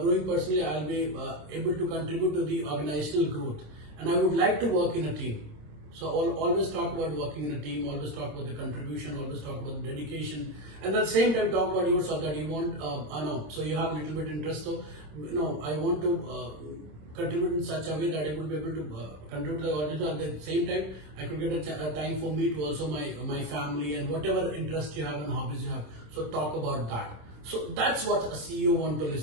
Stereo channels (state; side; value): late; left; 26 ms